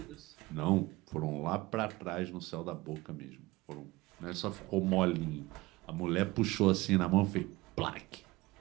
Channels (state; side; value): quieter; left; 20.7 dB